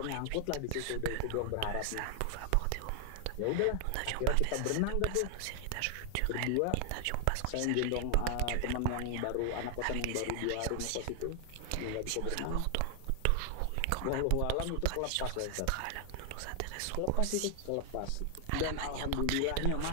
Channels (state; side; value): different; both; correlation 0.00